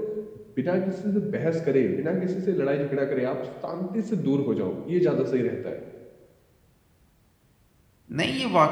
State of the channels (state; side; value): identical; both; correlation 1.00